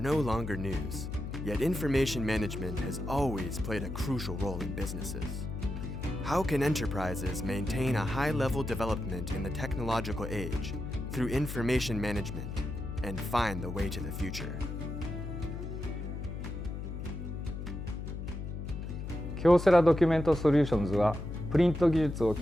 longer news, yet information management has always played a crucial role in businesses. How can enterprises maintain a high-level development in the technological age through information management and find the way to the future? KYOCERA Document Solutions はプリント技術を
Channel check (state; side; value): noise; left; hum, 6 dB below the sound